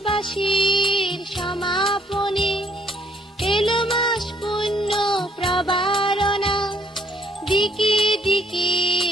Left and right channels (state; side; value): normal; both; correlation 0.66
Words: সমাপনে এলো মাস পুণ্য প্রবারণা, দিকে দিকে